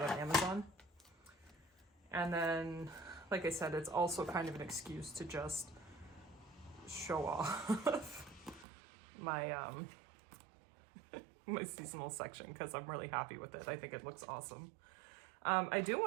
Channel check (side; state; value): left; drops out; at 8.7 s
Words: on Amazon. And then, like I said, it's also kind of an excuse to just show off my my seasonal section, because I'm really happy with it. I think it looks awesome. I do